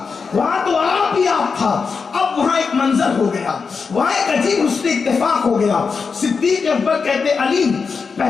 وہاں تو آپ ہی آپ تھا. اب وہاں ایک منظر ہو گیا، وہاں ایک عجیب حسن اتفاق ہو گیا. صدیق اکبر کہتے علی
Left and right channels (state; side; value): quieter; right; 5.2 dB